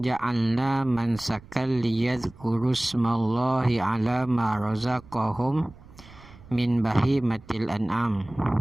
ja'alna mansakan liyadhkuru smallahi ala ma razaqahum min bahimatil an'am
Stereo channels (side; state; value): right; noise; rumble, 22 dB below the sound